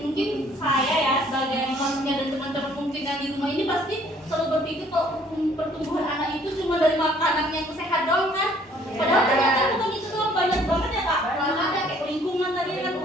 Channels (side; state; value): both; normal; correlation 0.60